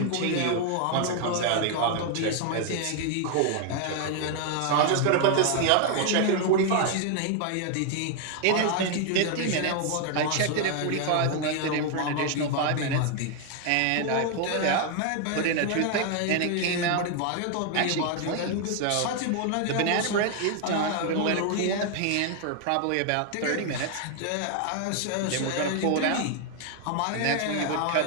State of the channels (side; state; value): both; different; correlation 0.00